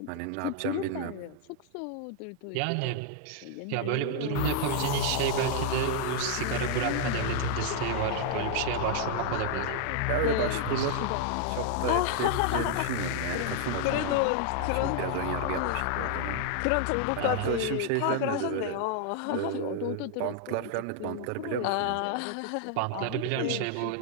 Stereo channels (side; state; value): both; different; correlation 0.00